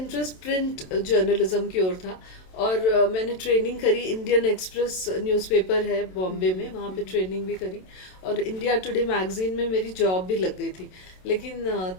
प्रिंट जर्नलिज्म की ओर था। और मैंने ट्रेनिंग करी, इंडियन एक्सप्रेस न्यूज़पेपर है बॉम्बे में, वहाँ पे ट्रेनिंग भी करी। और इंडिया टुडे मैगजीन में मेरी जॉब भी लग गई थी। लेकिन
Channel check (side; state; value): right; late; 27 ms